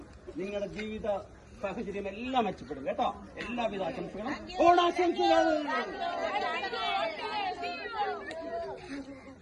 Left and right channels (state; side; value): identical; both; correlation 1.00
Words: നിങ്ങളുടെ ജീവിത സാഹചര്യം എല്ലാം മെച്ചപ്പെടും കേട്ടോ. എല്ലാവിധ ആശംസകളും, ഓണാശംസകൾ.